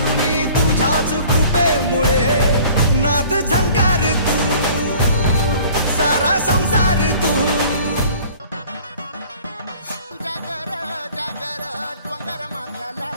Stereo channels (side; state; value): both; inverted; correlation -0.49